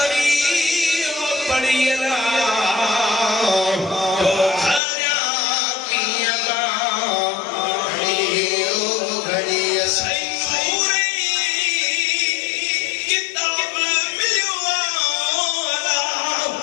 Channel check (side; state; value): right; drops out; at 4.8 s